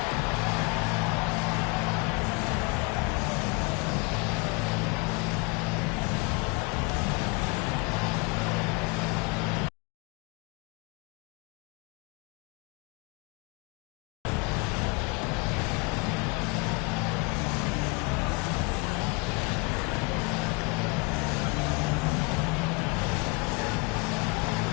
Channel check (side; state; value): right; quieter; 27.9 dB